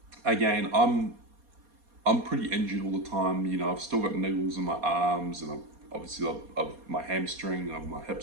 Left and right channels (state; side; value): late; left; 4.2 ms